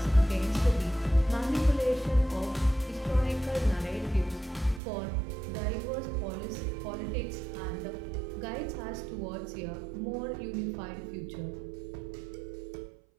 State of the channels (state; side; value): drops out; left; at 4.8 s